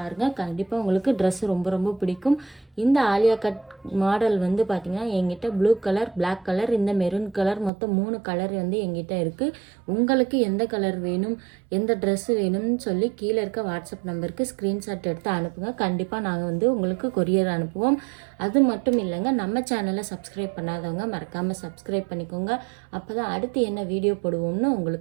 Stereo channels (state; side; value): drops out; left; at 7.7 s